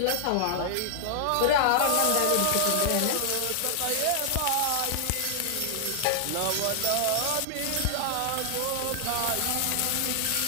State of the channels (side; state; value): both; different; correlation 0.00